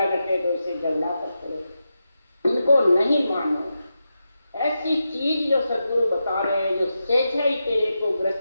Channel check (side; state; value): both; inverted; correlation -0.89